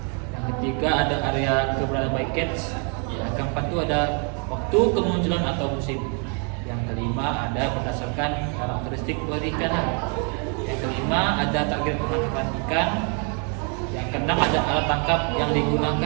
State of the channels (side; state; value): left; quieter; 38.2 dB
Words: Yang ketiga ada area keberadaan bycatch. Yang keempat tuh ada waktu kemunculan atau musim. Yang kelima ada berdasarkan karakteristik perikanan. Yang kelima ada target penangkapan ikan. Yang keenam ada alat tangkap yang